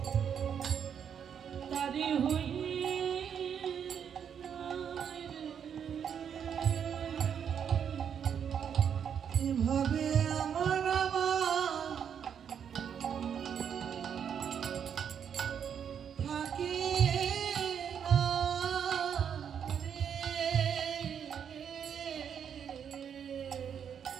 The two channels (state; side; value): quieter; left; 8.0 dB